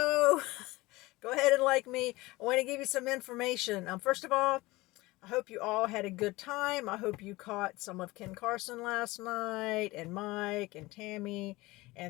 Go ahead and like me. I want to give you some information. First of all, I hope you all had a good time. I hope you caught some of Ken Carson last night, and Mike and Tammy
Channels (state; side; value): quieter; right; 20.7 dB